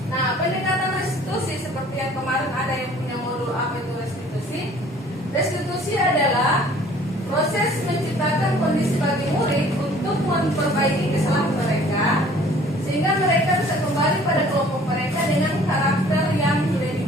Nah, pendekatan restitusi seperti yang kemarin ada yang punya modul apa itu restitusi. Restitusi adalah proses menciptakan kondisi bagi murid untuk memperbaiki kesalahan mereka, sehingga mereka bisa kembali pada kelompok mereka dengan karakter yang sudah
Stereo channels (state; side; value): normal; both; correlation 0.53